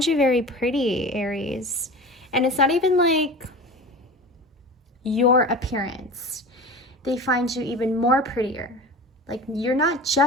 you very pretty, Aries. And it's not even like your appearance. They find you even more prettier. Like you're not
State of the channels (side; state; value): both; normal; correlation 0.34